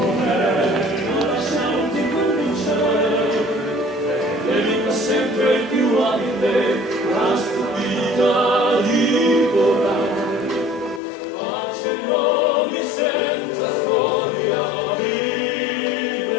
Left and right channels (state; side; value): drops out; right; at 11.0 s